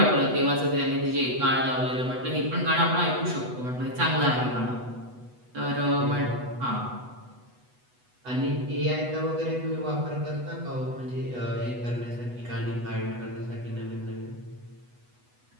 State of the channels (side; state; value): left; late; 8.1 ms